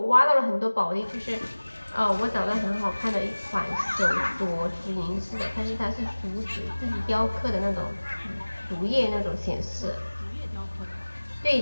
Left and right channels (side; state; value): both; inverted; correlation -1.00